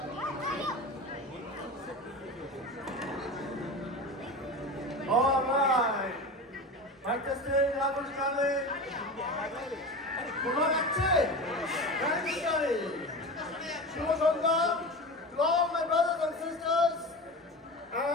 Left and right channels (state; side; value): normal; both; correlation 0.28